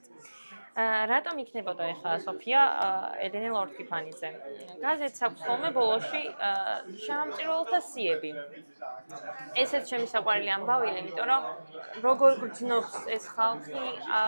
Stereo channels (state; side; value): inverted; both; correlation -1.00